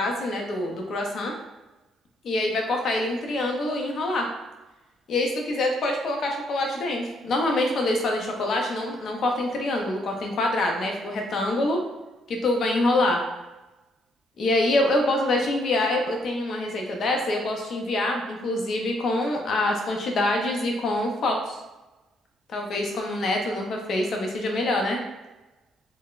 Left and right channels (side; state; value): both; normal; correlation 0.71